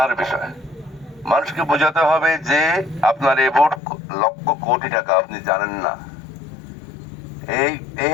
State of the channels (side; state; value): right; drops out; at 3.8 s